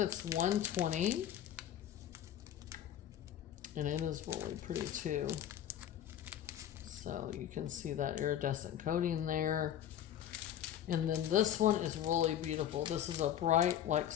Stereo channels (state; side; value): quieter; right; 10.8 dB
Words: 120. And it is really pretty too. So you can see that iridescent coating there. And then this one is really beautiful. This is a bright, like